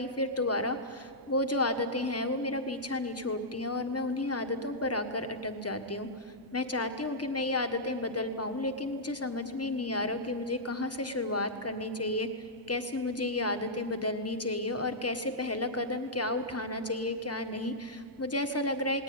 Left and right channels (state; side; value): normal; both; correlation -0.12